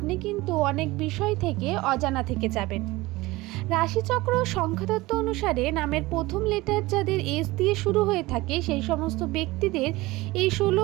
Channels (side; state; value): left; quieter; 20.3 dB